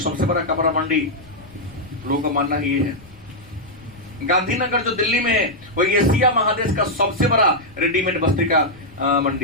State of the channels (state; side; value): noise; left; rumble, 23 dB below the sound